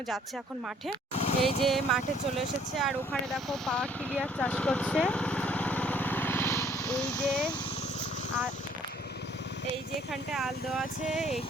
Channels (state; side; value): normal; both; correlation 0.60